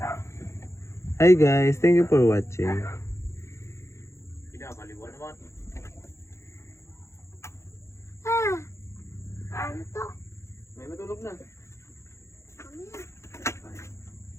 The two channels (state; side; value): late; right; 0.14 ms